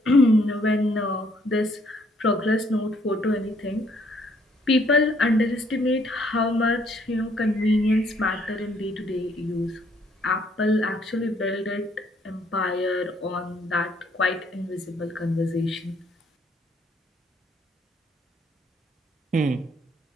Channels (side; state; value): both; normal; correlation 0.66